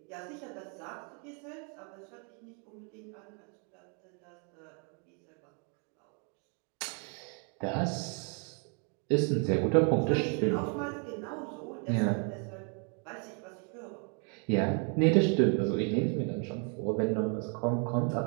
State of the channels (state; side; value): quieter; left; 38.5 dB